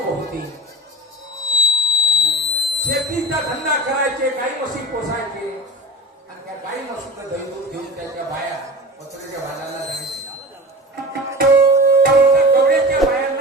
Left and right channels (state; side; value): normal; both; correlation 0.32